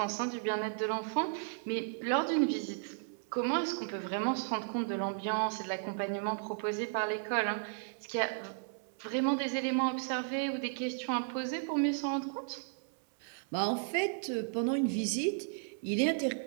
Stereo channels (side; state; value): left; silent; 55 dB below the other